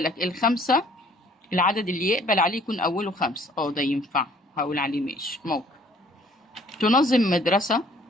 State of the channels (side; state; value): both; normal; correlation 0.58